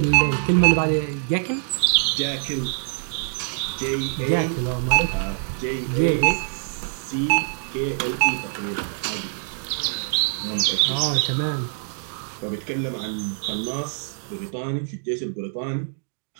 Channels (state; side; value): silent; left; 62 dB below the other